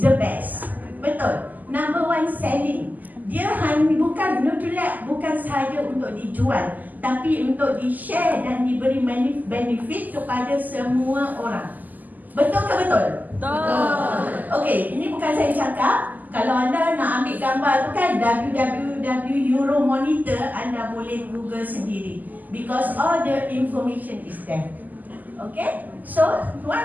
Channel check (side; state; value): left; late; 0.083 ms